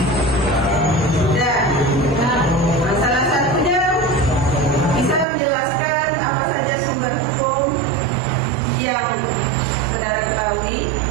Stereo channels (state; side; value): drops out; left; at 5.2 s